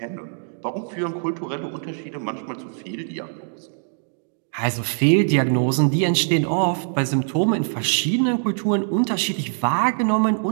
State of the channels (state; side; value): silent; left; digital silence